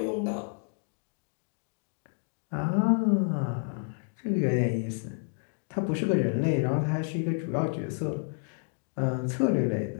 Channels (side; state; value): right; silent; 58 dB below the other